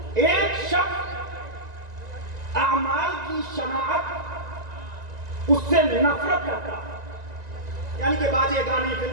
ایک شخص اعمال کی شناعت اس سے نفرت کرتا، یعنی کہ باجے گانے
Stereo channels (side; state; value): left; late; 1.9 ms